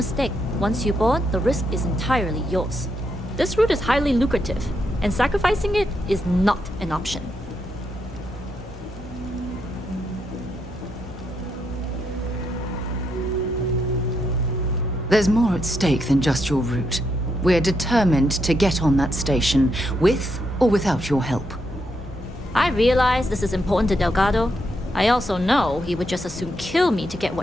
once you board, the risk is entirely yours. This route is highly lucrative, and sacrificing it is not an option. There's more at stake than just your route. We're determined to get on that station, with or without your help. I realize this is important to Delgado. I also know he would just as soon kill me to get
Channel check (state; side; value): normal; both; correlation 0.80